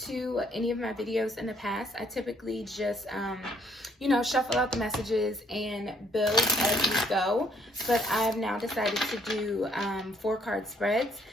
any of my videos in the past, I typically just, shuffle out the messages and build as we go. But I've now decided to do 4-card spreads.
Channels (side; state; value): both; normal; correlation 0.67